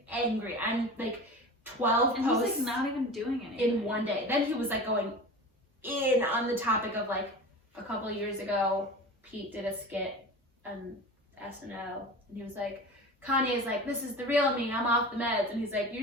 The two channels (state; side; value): normal; both; correlation 0.33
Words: angry. I'm like 12 and posts. He's like not even doing anything in one day. Then he was like going in on the topic of like a couple of years ago, Pete did a skit on SNL, and he was like, Kanye's like, this is the real me, I'm off the meds, and he's like,